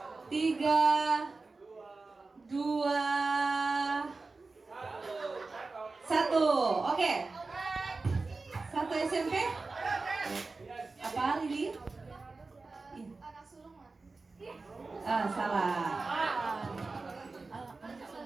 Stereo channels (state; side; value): quieter; left; 3.8 dB